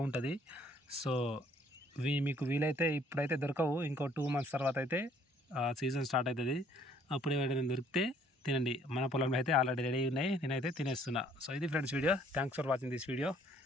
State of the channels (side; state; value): both; normal; correlation 0.61